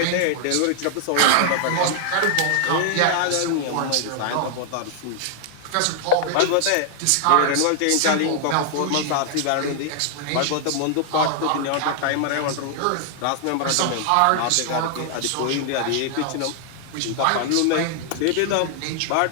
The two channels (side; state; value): both; different; correlation 0.00